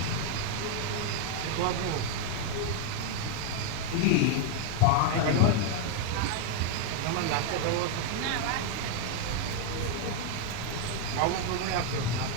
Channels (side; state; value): both; different; correlation 0.00